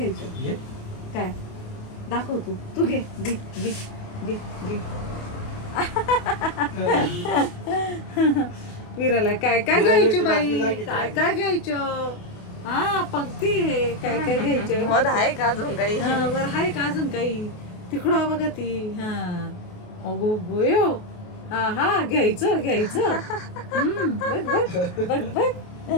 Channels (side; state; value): right; late; 28 ms